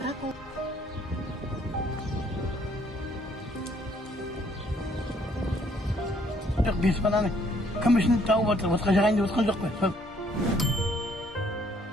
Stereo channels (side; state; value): both; normal; correlation 0.64